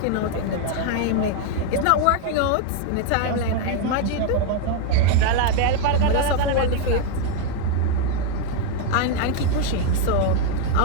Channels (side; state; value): both; different; correlation 0.00